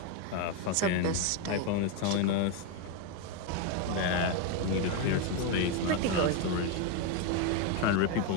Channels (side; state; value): both; different; correlation 0.02